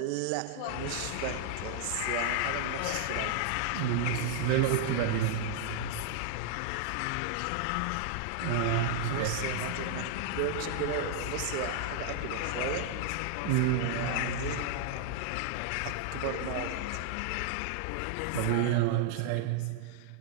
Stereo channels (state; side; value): different; both; correlation -0.01